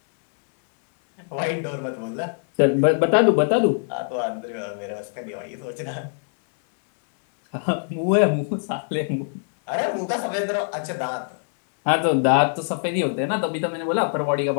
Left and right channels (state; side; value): silent; right; digital silence